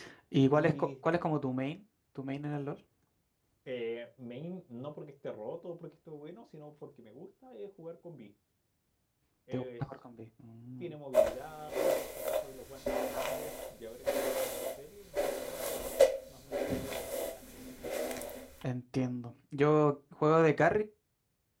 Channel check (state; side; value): identical; both; correlation 1.00